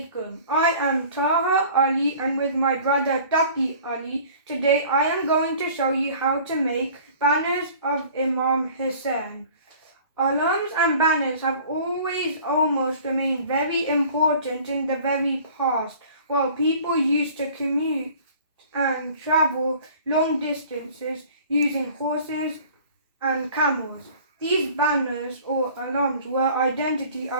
I am Taha Ali and with my brother Taha Ali, today I am going to show you how to make banners of Imam Hussain. Alarms and banners have always almost remained very important in the very past, while people used to commute and travel long distances using horses and camels. These banners or alarms were identity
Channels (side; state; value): both; inverted; correlation -0.48